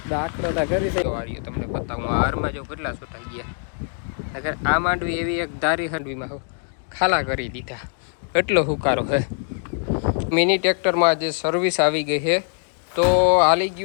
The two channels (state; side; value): silent; right; 57 dB below the other